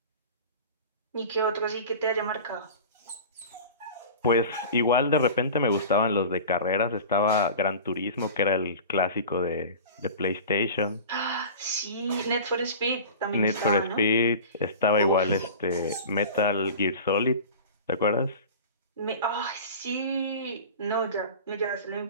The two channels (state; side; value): inverted; both; correlation -0.36